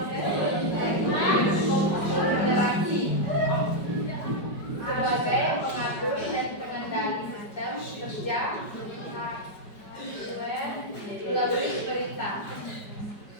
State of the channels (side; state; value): right; late; 5.0 ms